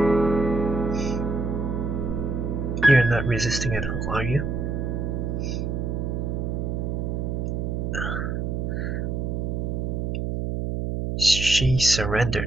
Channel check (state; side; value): noise; right; hum, 1 dB below the sound